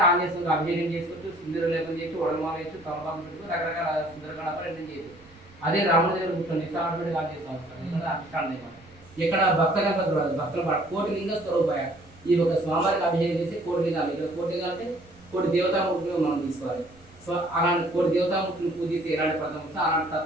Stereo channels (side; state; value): right; noise; rumble, 25 dB below the sound